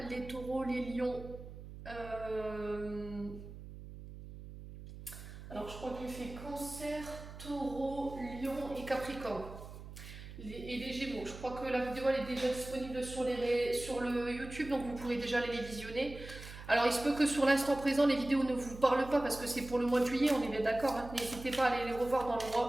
les taureaux, les lions. Alors je crois que j'ai fait cancer, taureau, lion et capricorne. Et les gémeaux. Je crois que la vidéo elle est déjà disponible sur le YouTube, donc vous pourrez déjà aller les visionner. Alors il se peut que sur l'instant présent les vidéos ne vous parlent pas parce que c'est pour le mois de juillet, on est bien d'accord, hein. N'hésitez pas à aller les revoir dans le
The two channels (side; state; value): right; noise; hum, 13 dB below the sound